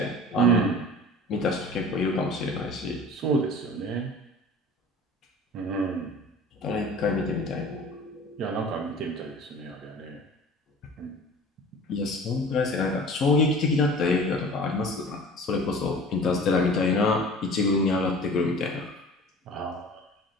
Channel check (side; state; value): both; normal; correlation 0.42